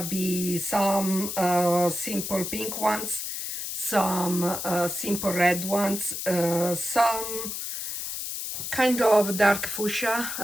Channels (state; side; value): noise; left; hiss, 5 dB below the sound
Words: be some simple pink ones, some simple red ones, some kind of dark